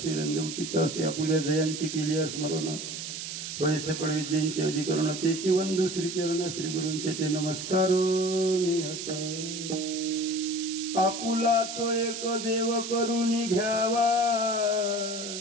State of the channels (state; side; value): noise; right; hiss, 7 dB below the sound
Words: उचित असे आपल्या जयांची केली स्मरण होय सकळ विद्यांचे अधिकरण तेची वंदू श्रीचरण श्री गुरूंचे ते नमस्कार निहता आपुला तो एक देव करुणी घ्यावा